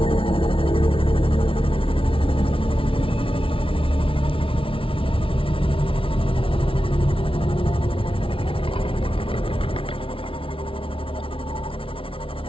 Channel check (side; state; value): right; late; 0.26 ms